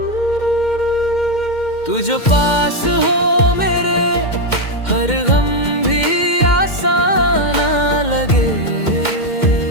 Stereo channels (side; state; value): right; late; 2.1 ms